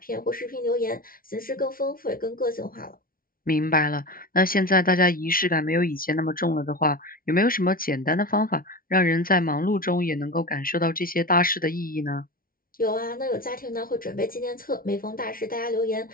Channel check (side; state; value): right; late; 0.42 ms